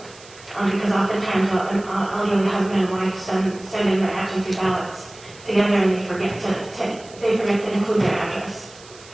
Because oftentimes an elderly husband and wife send in their absentee ballots together, and they forget to include their address.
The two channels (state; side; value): noise; right; hiss, 21 dB below the sound